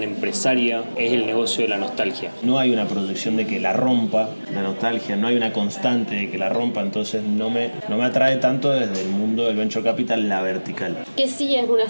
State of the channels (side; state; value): both; inverted; correlation -1.00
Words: empresaria es el negocio de la nostalgia? No hay una proyección de que la rompa la nostalgia, no hay una constante de que la rompa, entonces no me atrae tanto desde el mundo del venture capital la vertical. Que sí es una